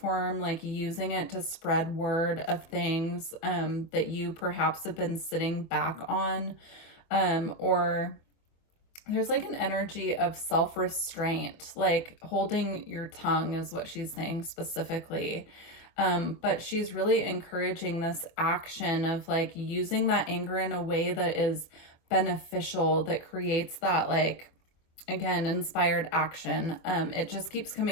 like using it to spread word of things that you perhaps have been sitting back on, or there's like an energy of self-restraint, like holding your tongue is what she's saying specifically. But she's really encouraging this action of like using that anger in a way that is beneficial, that creates that like, again, inspired action. It just keeps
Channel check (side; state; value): right; late; 24 ms